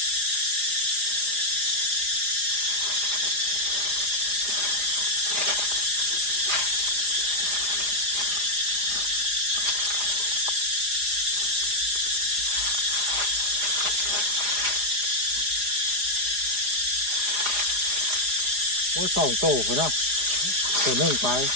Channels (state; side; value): late; left; 4.9 ms